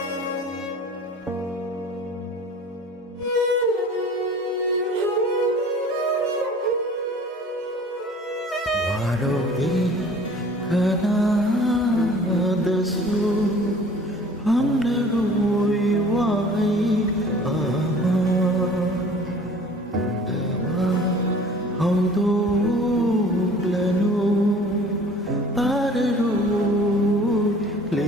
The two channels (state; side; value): normal; both; correlation 0.48